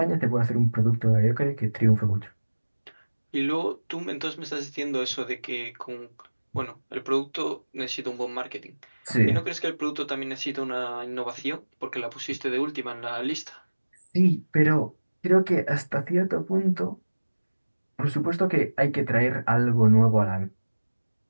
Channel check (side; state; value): both; inverted; correlation -1.00